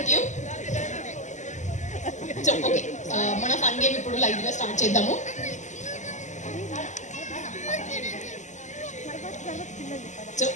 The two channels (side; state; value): right; late; 0.34 ms